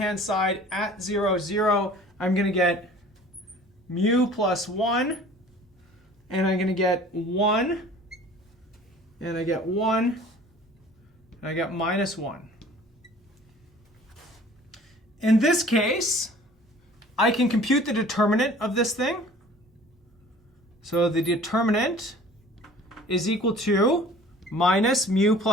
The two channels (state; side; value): normal; both; correlation 0.48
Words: side at 0, 0, I'm going to get mu plus 1, and I'm going to get 1, and I get 1, and I get minus 1. In this case, I can compute the determinant of this thing. So the determinant is equal to minus mu